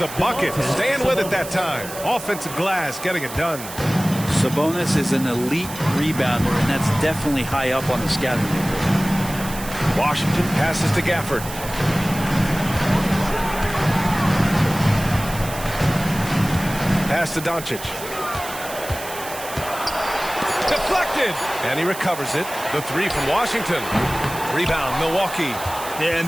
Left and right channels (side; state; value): right; noise; hiss, 12 dB below the sound